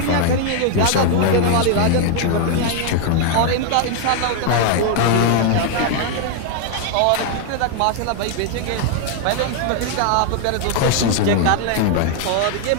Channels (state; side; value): different; both; correlation 0.00